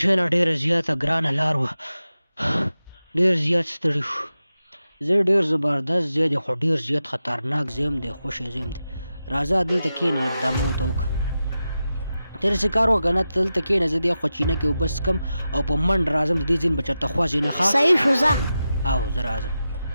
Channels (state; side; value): inverted; both; correlation -0.91